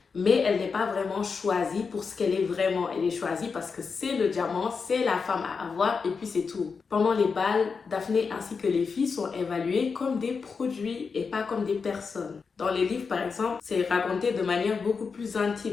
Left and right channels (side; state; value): right; quieter; 5.2 dB